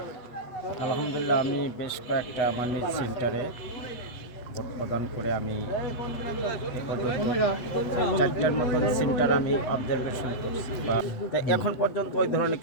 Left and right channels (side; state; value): right; late; 8.1 ms